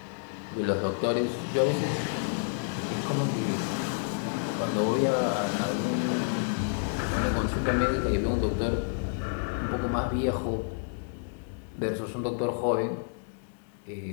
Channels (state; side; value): silent; right; 58 dB below the other